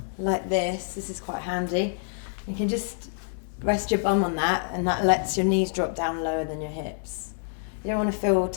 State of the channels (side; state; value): right; silent; digital silence